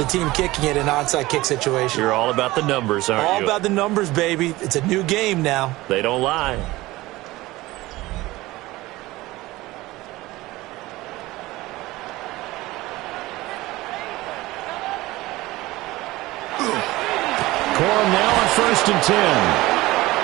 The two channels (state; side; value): quieter; left; 18.9 dB